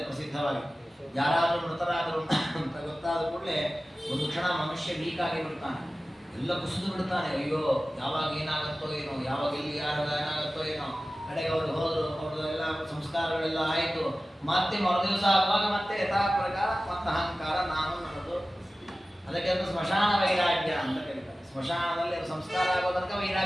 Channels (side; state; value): both; normal; correlation 0.96